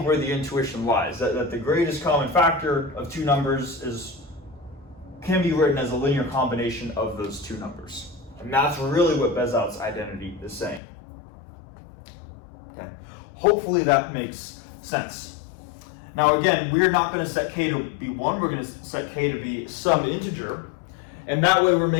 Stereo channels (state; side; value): drops out; right; at 10.8 s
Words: where the intuition lies, that the greatest common factor of two numbers can be written as a linear combination of those two numbers. And that's really what Bézout's identity is saying. Okay. Hopefully that makes sense. Now again, we're not going to set k to be 1, we're going to set k to be some integer. And that way we're